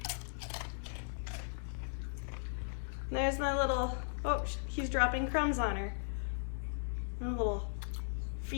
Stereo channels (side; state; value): right; silent; digital silence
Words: There's my little, oh, he's dropping crumbs on her. My little